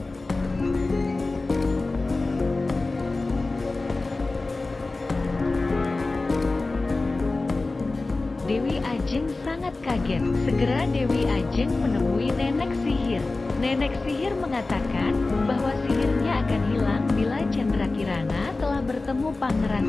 Dewi Ajeng sangat kaget. Segera Dewi Ajeng menemui nenek sihir. Nenek sihir mengatakan bahwa sihirnya akan hilang bila Candrakirana telah bertemu Pangeran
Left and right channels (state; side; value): quieter; right; 3.4 dB